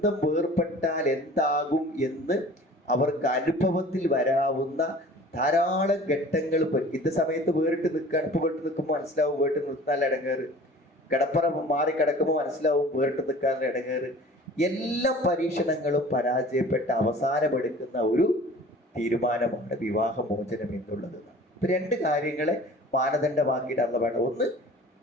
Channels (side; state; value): both; normal; correlation 0.45